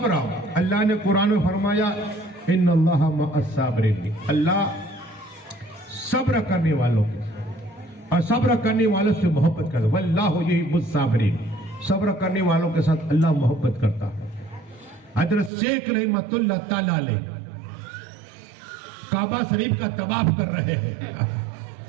अल्लाह ने कुरान में फरमाया इन्नल्लाह मअस साबिरीन, अल्लाह सब्र करने वालों के और सब्र करने वालों से मोहब्बत करता है। वल्लाहु युहिब्बुस साबिरीन, सब्र करने वालों के साथ अल्लाह मोहब्बत करता है। हजरत शेख रहमतुल्लाह ताला अलैह काबा शरीफ का तवाफ कर रहे हैं।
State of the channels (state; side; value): drops out; left; at 15.5 s